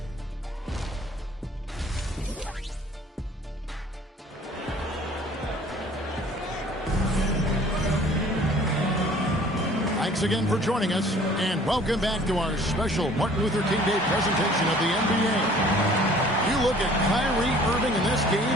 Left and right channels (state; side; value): normal; both; correlation 0.52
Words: Thanks again for joining us, and welcome back to our special Martin Luther King Day presentation of the NBA. You look at Kyrie Irving in this